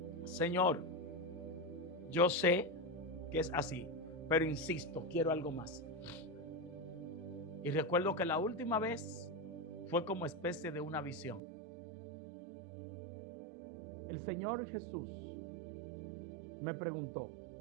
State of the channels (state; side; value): drops out; left; at 11.4 s